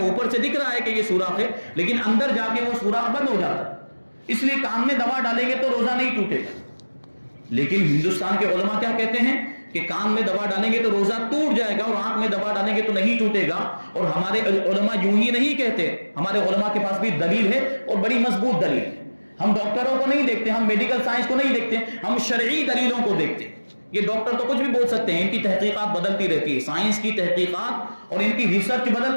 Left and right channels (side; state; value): both; inverted; correlation -1.00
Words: سے دکھ رہا ہے کہ یہ سوراخ ہے لیکن اندر جا کے وہ سوراخ بند ہو جاتا ہے، اس لیے کان میں دوا ڈالیں گے تو روزہ نہیں ٹوٹے گا۔ لیکن ہندوستان کے علماء کیا کہتے ہیں کہ کان میں دوا ڈالیں گے تو روزہ ٹوٹ جائے گا اور آنکھ میں دوا ڈالیں گے تو نہیں ٹوٹے گا۔ اور ہمارے علماء یوں ہی نہیں کہتے، ہمارے علماء کے پاس بھی دلیل ہے اور بڑی مضبوط دلیل ہے۔ ہم ڈاکٹروں کو نہیں دیکھتے، ہم میڈیکل سائنس کو نہیں دیکھتے، ہم شرعی دلیلوں کو دیکھتے ہیں۔ یہ ڈاکٹر تو کچھ بھی بول سکتے ہیں، ان کی تحقیقات بدلتی رہتی ہے، سائنس کی تحقیقات اور ان کی ریسرچ